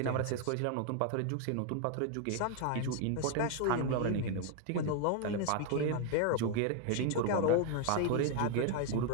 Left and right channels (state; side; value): different; both; correlation 0.00